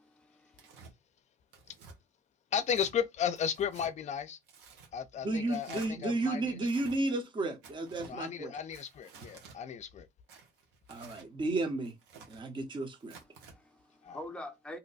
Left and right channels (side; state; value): both; normal; correlation 0.51